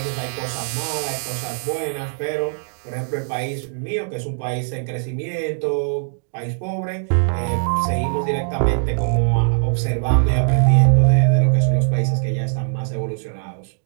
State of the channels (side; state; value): left; silent; digital silence